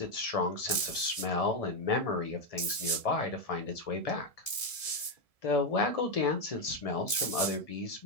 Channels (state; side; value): late; right; 1.7 ms